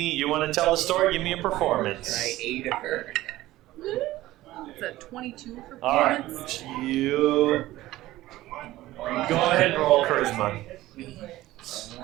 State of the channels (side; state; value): left; quieter; 16.4 dB